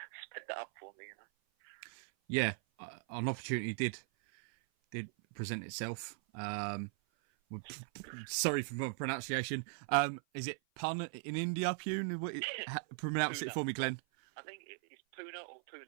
sped that up for me. Yeah, an opportunity did present itself. Sorry for my pronunciation. Is it Pun in India, Pune? Pronounce it for me, Glenn. I think it's Pune or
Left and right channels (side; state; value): left; silent; 52 dB below the other